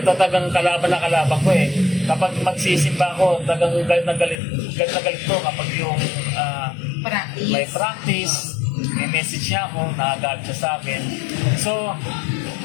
talagang kalaban na kalaban ko Kapag magsisimba ako, talagang galit na galit ko kapag yung may practice, may message niya ako, nakagalit siya sa akin. So,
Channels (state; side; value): drops out; right; at 4.4 s